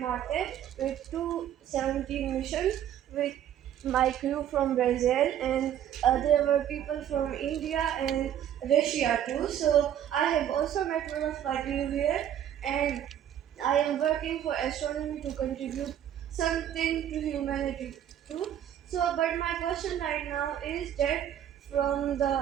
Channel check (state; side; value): quieter; left; 10.4 dB